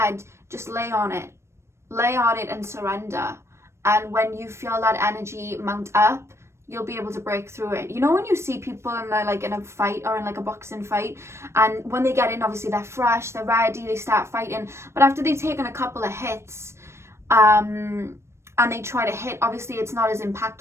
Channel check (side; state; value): left; late; 0.13 ms